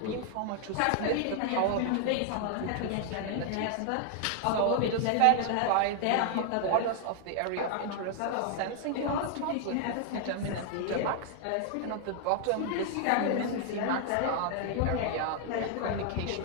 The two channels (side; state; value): both; different; correlation 0.00